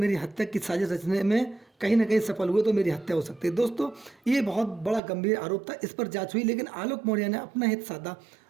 हत्या की साजिश रचने में कहीं ना कहीं सफल हुए तो मेरी हत्या हो सकती है। दोस्तों, ये बहुत बड़ा गंभीर आरोप था, इस पर जांच हुई, लेकिन आलोक मौर्य ने अपना हित साधा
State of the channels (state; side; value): drops out; left; at 5.0 s